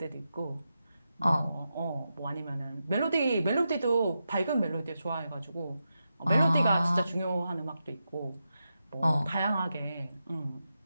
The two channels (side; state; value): both; inverted; correlation -0.88